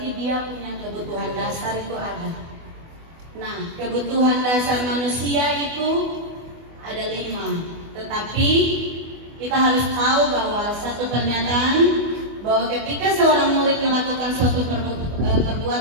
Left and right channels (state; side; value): late; left; 24 ms